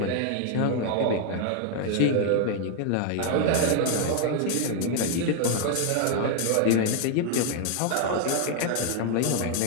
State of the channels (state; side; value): different; both; correlation 0.00